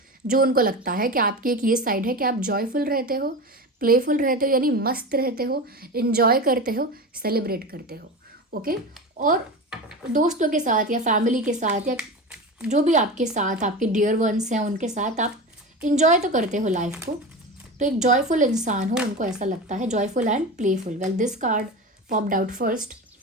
जो उनको लगता है कि आपकी एक ये साइड है कि आप जॉयफुल रहते हो, प्लेफुल रहते हो, यानी मस्त रहते हो, इंजॉय करते हो, सेलिब्रेट करते हो। ओके, और दोस्तों के साथ या फैमिली के साथ या जो भी आपके साथ आपके डियर वंस हैं उनके साथ आप इंजॉय तो करते हो लाइफ को। तो एक जॉयफुल इंसान हो, उनको ऐसा लगता है, joyful and playful. Well, this card popped out first.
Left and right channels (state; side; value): normal; both; correlation 0.26